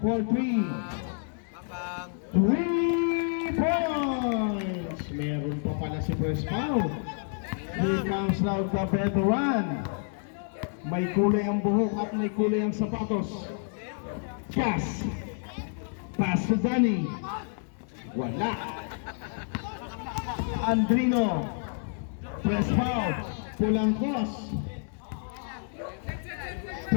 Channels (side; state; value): right; silent; 59 dB below the other